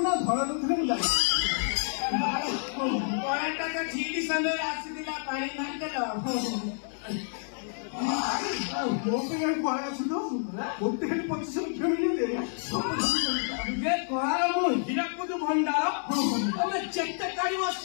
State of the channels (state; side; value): silent; right; 59 dB below the other